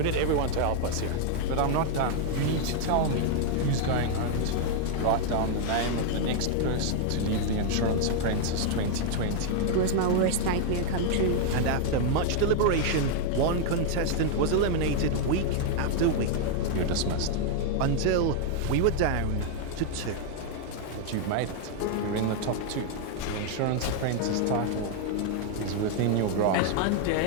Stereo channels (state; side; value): different; both; correlation 0.00